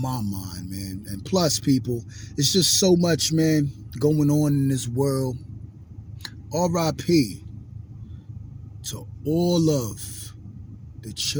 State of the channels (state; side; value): identical; both; correlation 1.00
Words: my mind, man. And plus, people, it's just so much, man, going on in this world. R.I.P. to all of the